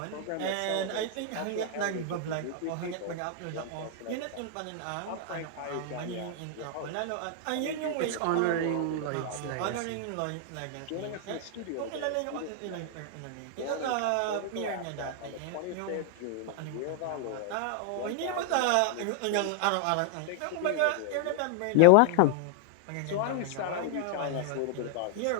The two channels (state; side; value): different; both; correlation 0.00